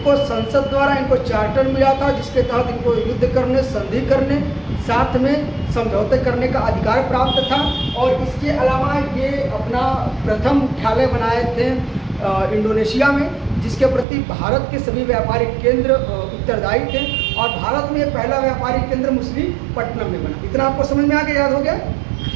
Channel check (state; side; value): drops out; left; at 14.1 s